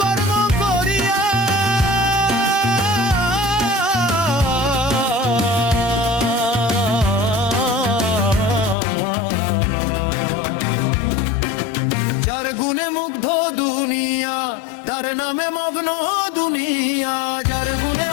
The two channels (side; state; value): right; drops out; at 8.8 s